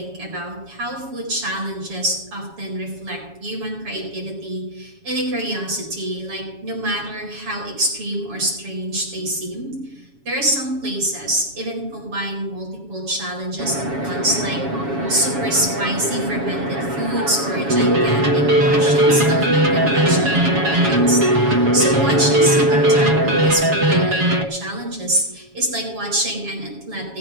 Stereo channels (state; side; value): late; left; 7.2 ms